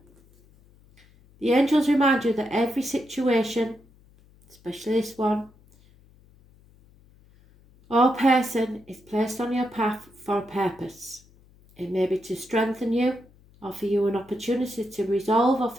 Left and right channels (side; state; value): left; noise; hum, 28 dB below the sound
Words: the angels remind you that every situation, especially this one, or person is placed on your path for a purpose. It may be to strengthen you, offer you an opportunity to resolve or